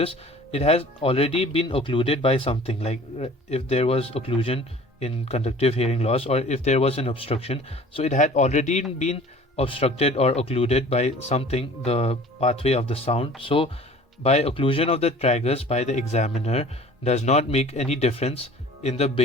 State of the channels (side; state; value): both; normal; correlation 0.46